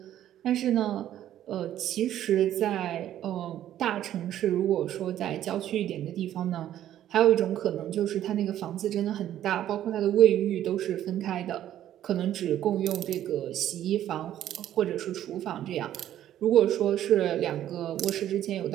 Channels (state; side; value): quieter; left; 11.8 dB